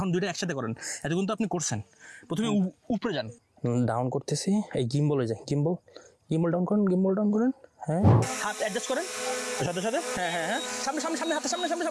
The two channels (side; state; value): both; identical; correlation 1.00